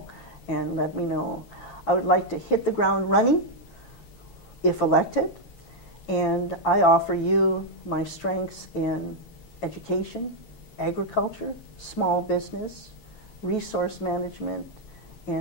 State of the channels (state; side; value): late; right; 9.2 ms